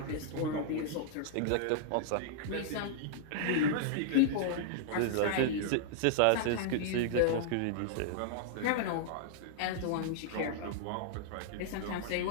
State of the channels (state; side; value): different; both; correlation -0.01